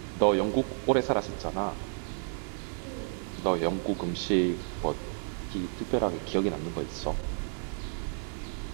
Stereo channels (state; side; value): silent; left; 57 dB below the other